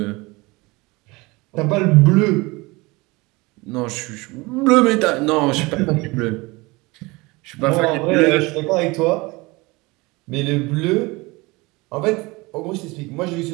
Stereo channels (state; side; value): quieter; left; 23.7 dB